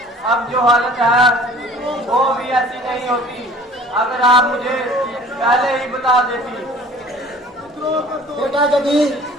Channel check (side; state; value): both; normal; correlation 0.49